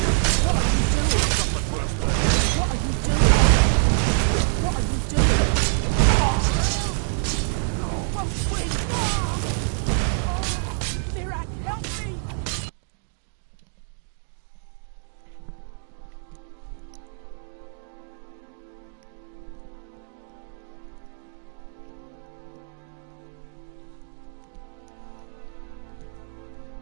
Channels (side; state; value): left; silent; 61 dB below the other